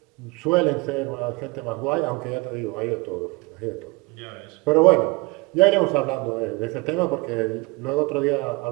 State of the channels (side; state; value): left; quieter; 26.5 dB